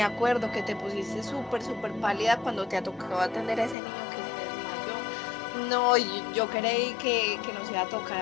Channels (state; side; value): drops out; right; at 3.8 s